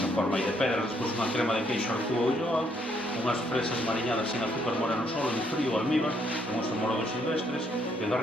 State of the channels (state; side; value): normal; both; correlation 0.71